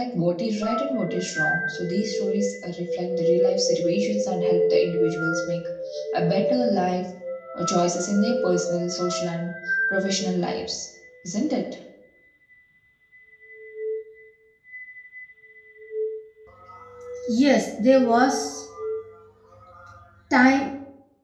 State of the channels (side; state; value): both; identical; correlation 1.00